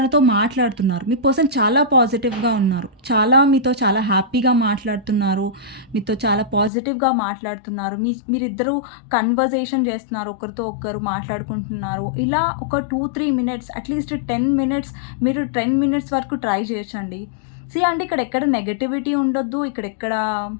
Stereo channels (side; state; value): right; drops out; at 6.7 s